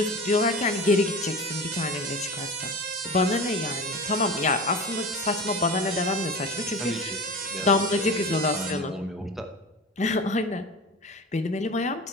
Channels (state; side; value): normal; both; correlation 0.31